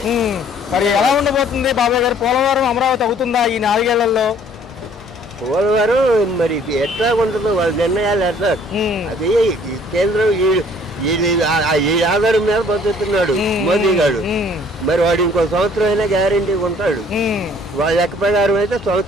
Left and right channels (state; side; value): normal; both; correlation 0.58